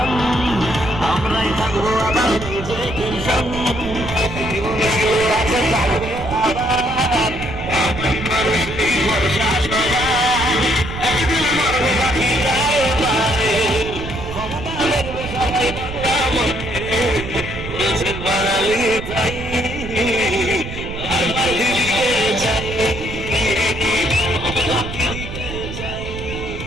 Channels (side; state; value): right; noise; rumble, 9 dB below the sound